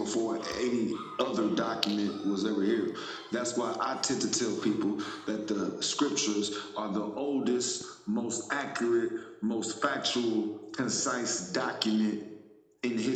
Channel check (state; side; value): identical; both; correlation 1.00